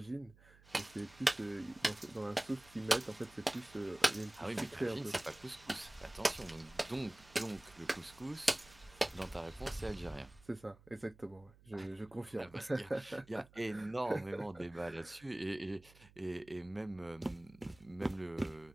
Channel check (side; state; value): right; noise; hum, 24 dB below the sound